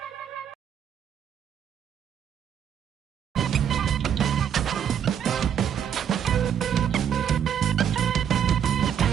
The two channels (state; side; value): quieter; left; 8.8 dB